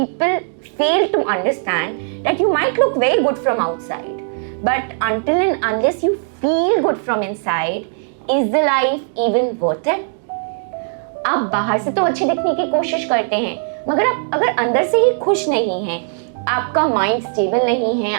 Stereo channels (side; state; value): left; silent; digital silence